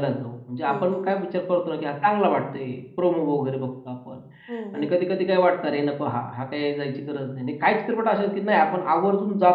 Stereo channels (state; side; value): identical; both; correlation 1.00